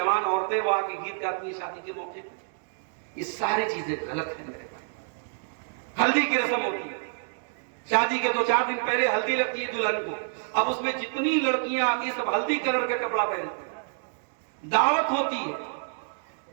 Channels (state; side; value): silent; left; digital silence